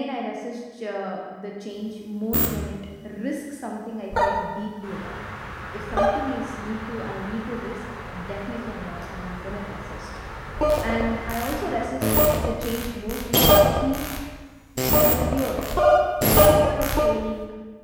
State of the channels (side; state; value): both; identical; correlation 1.00